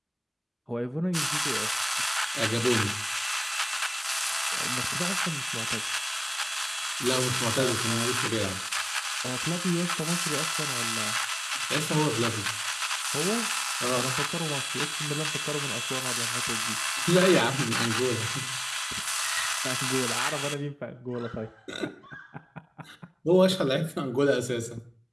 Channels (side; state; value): both; identical; correlation 1.00